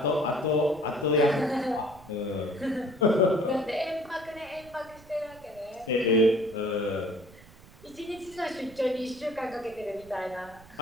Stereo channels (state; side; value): noise; right; rumble, 22 dB below the sound